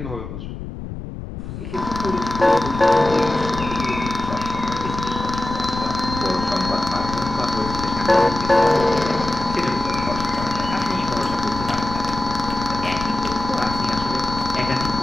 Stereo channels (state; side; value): noise; left; rumble, 9 dB below the sound